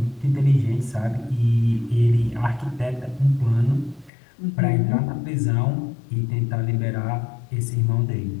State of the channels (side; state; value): right; drops out; at 4.1 s